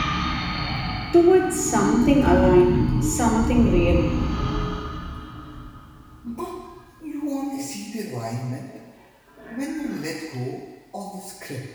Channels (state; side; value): identical; both; correlation 1.00